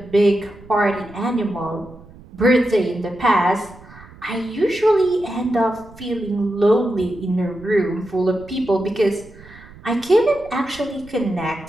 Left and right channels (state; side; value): noise; right; rumble, 21 dB below the sound